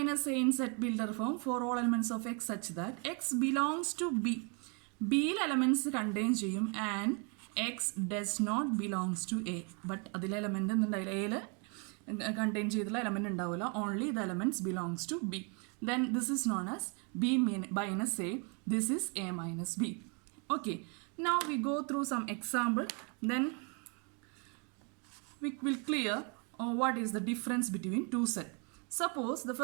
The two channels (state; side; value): quieter; left; 35.1 dB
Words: A in set builder form for all elements of X such that X belongs to B. B elements contain ചെയ്യും and X does not belongs to A. But അതിലെ element എന്തുണ്ടായില്ല, Aയിൽ contain ചെയ്തുള്ള element ഉണ്ടാവില്ല. Only the elements belongs to B. Then this is known as B minus A. This is A minus B. Okay, now we go through some example. Then we will clear what is the difference between two sets. Suppose the